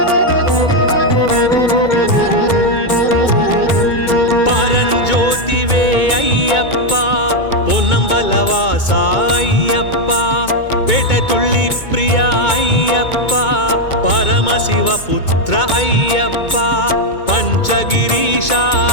పరంజ్యోతివే అయ్యప్ప పొన్నంబలవాస అయ్యప్ప పెటతుళ్ళి ప్రియ అయ్యప్ప పరమశివ పుత్ర అయ్యప్ప పంచగిరీశ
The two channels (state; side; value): late; right; 2.2 ms